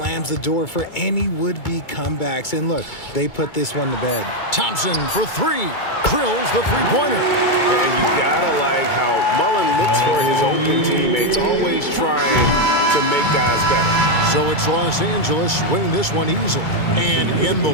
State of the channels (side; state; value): right; late; 2.3 ms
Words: the door for any would-be comebacks. And look, they put this one to bed. Thompson for three. Drills the three-pointer. And you gotta like how Mullen looks for his open teammates, always trying to make guys better. So it's Los Angeles winning this one easily. And in the